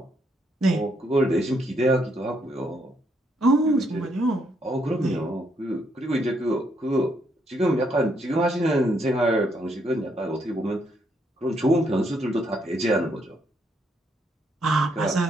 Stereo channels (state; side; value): normal; both; correlation 0.74